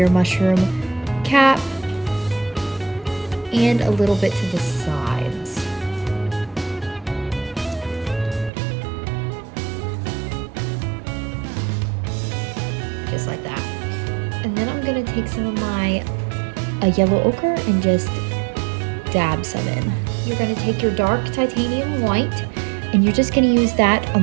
mushroom cap, and a little bit to the sides. Just like that. And then I'm gonna take some of my yellow ochre and just dab some in. You're gonna take your dark titanium white, and you're just gonna use that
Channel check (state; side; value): drops out; left; at 8.5 s